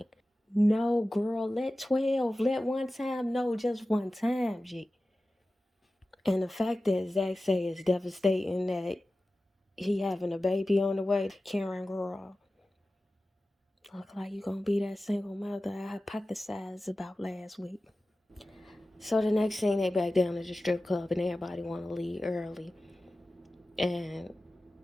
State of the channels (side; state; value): both; normal; correlation 0.95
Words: No, girl, let 12. Let one time. No, just one time, G. And the fact that Zach say is devastating that he having a baby on the way. Karen, girl, look like you gonna be that single mother I hypothesized about last week. So the next thing, they back down to the strip club and everybody want to leave early. And